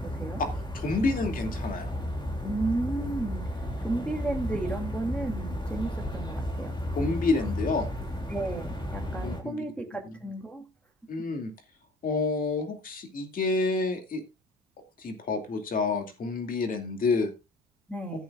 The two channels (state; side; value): normal; both; correlation 0.61